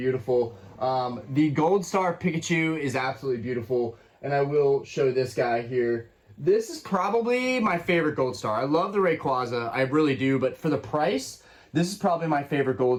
The Gold Star Pikachu is absolutely beautiful. And I will show this guy here. This is probably my favorite Gold Star. I love the Rayquaza, I really do. But for the price, this is probably my favorite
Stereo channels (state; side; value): identical; both; correlation 1.00